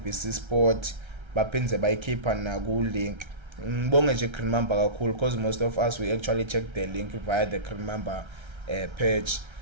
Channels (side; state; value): left; late; 1.3 ms